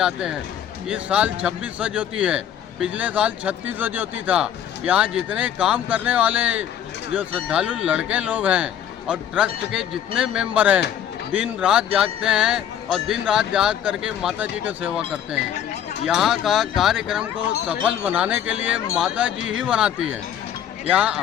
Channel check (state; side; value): quieter; right; 9.8 dB